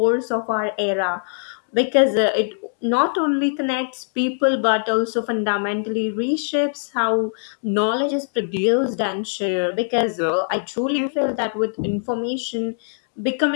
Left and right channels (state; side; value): silent; right; digital silence